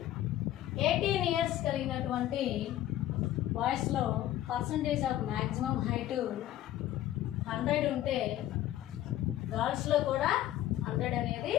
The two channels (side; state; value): right; quieter; 13.3 dB